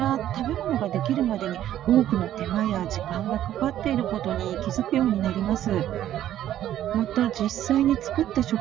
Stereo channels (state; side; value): quieter; left; 12.0 dB